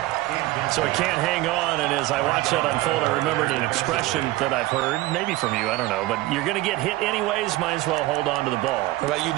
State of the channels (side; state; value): left; quieter; 18.0 dB